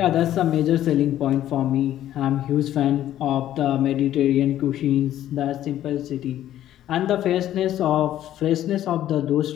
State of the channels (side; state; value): right; quieter; 12.4 dB